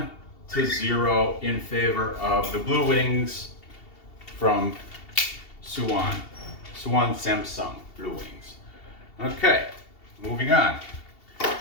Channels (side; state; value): right; late; 2.7 ms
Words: in favor of the Blue Wings from Suwon. Suwon Samsung Blue Wings. Okay, moving on.